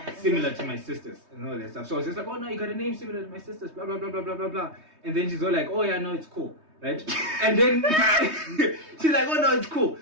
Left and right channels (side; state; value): left; late; 3.2 ms